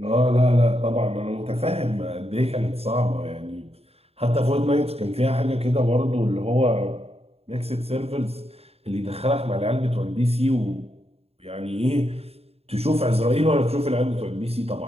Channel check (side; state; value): left; late; 0.29 ms